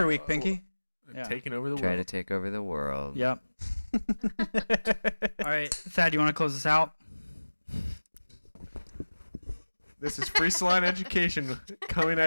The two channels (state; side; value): inverted; both; correlation -1.00